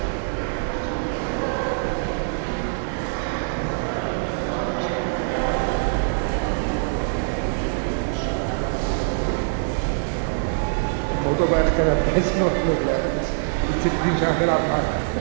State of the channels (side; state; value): left; silent; 60 dB below the other